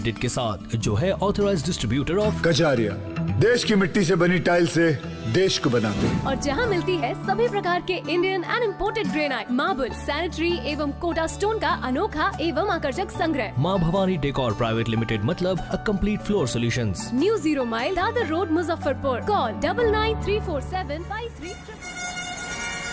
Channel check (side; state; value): both; identical; correlation 1.00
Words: के साथ, जो है ऑथराइज्ड डिस्ट्रीब्यूटर ऑफ कजारिया। देश की मिट्टी से बनी टाइल से देश को बनाते हैं। और जहाँ मिलती है सभी प्रकार के Indian and imported granite, marble, sanitary एवं कोटा स्टोन का अनोखा एवं आकर्षक संग्रह। माँ भवानी डेकोर प्राइवेट लिमिटेड मतलब a complete floor solutions. New 0 mile Dadar road, Muzaffarpur. Call 9934753333।